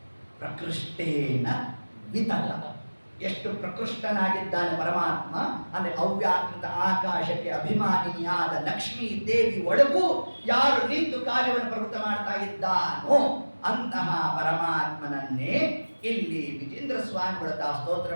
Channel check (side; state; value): both; inverted; correlation -1.00